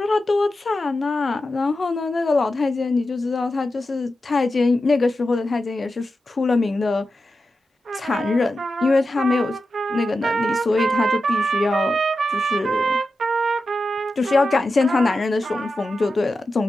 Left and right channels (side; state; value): both; normal; correlation 0.91